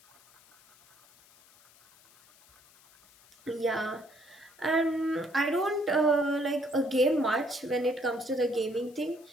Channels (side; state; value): left; noise; hiss, 27 dB below the sound